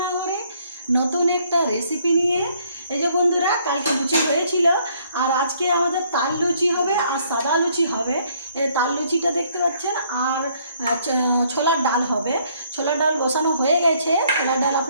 নতুন একটা রেসিপি নিয়ে। এই যে বন্ধুরা, কালকে লুচি হয়েছিল আর আজকে আমাদের তাল লুচি হবে আর সাদা লুচি হবে। এই তাল লুচিটা দেখতে পাচ্ছেন, আর ছোলার ডাল হবে। ছোলার ডাল বসানো হয়ে গেছে, ছোলার ডাল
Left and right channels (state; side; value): inverted; both; correlation -0.65